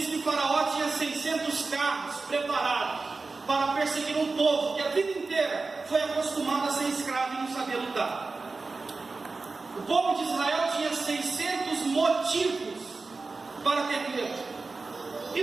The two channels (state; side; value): quieter; left; 3.9 dB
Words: que Faraó tinha 600 carros preparados para perseguir um povo que a vida inteira foi acostumado a ser escravo e não sabia lutar. O povo de Israel tinha 600 motivos para ter medo. E